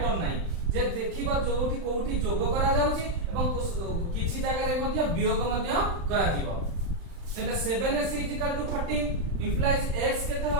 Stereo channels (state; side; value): late; left; 35 ms